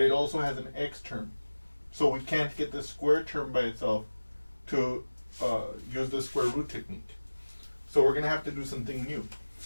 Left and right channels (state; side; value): inverted; both; correlation -1.00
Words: it also has an x term. So we can't get the square term by itself to use the square root technique. So we're going to have to do something new.